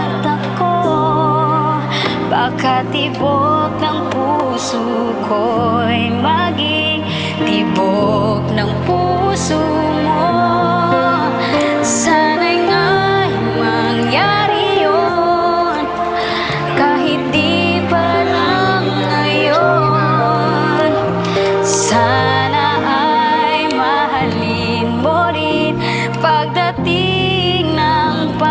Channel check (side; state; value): both; identical; correlation 1.00